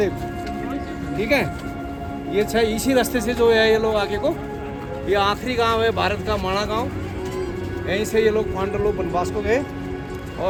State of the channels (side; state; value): both; identical; correlation 1.00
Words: ठीक है, ये छह इसी रास्ते से जो है ये लोग आगे को, ये आखिरी गांव है भारत का माणा गांव, यहीं से ये लोग पांडव लोग वनवास को गए।